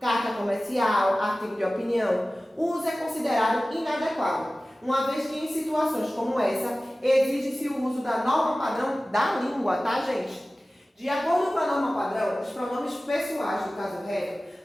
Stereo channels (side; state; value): both; normal; correlation 0.97